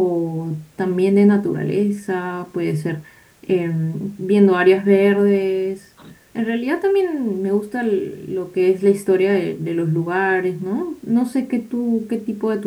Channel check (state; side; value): identical; both; correlation 1.00